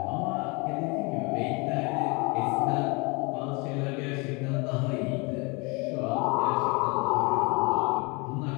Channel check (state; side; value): quieter; right; 28.8 dB